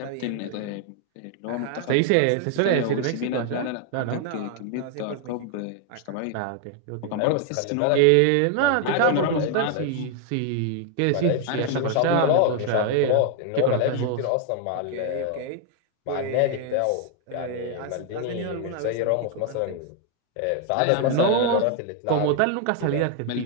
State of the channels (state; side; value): different; both; correlation 0.00